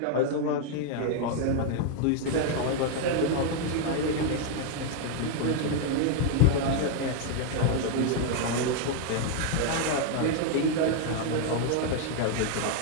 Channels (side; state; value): both; different; correlation 0.00